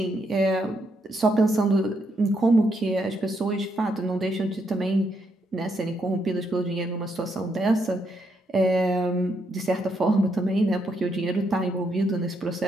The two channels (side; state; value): both; normal; correlation 0.77